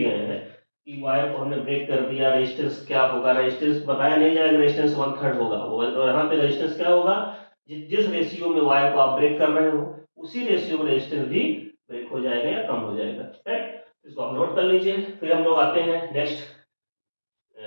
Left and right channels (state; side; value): inverted; both; correlation -1.00